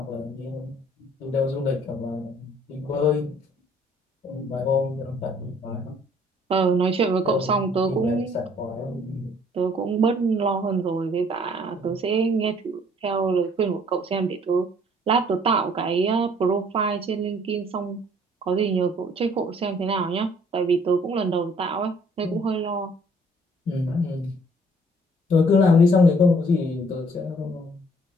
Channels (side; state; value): both; normal; correlation 0.59